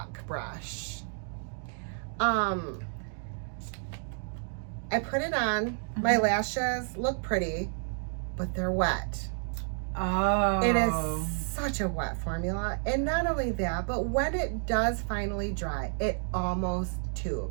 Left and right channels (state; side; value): silent; left; 57 dB below the other